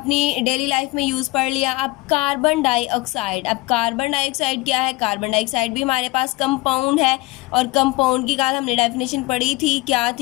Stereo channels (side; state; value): right; quieter; 21.7 dB